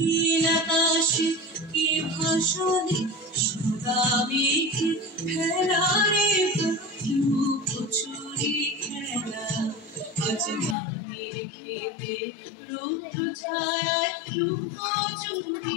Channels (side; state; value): right; drops out; at 10.8 s